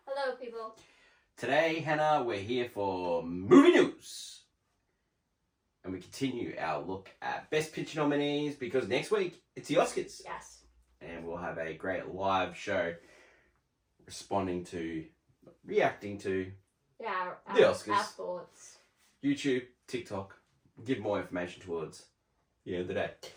Hello, people. Today, Hannah, we're here for movie news. And we continue our look at Best Picture nominees because next week, it's the Oscars. Yes. And we'll have a great live show reacting to Yeah, the Oscars. Our thoughts. YouTube, TikTok, give more information towards the end of the day.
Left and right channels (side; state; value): both; identical; correlation 1.00